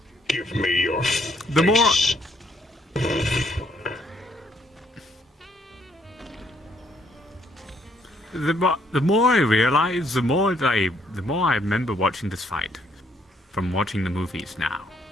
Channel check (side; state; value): both; normal; correlation 0.69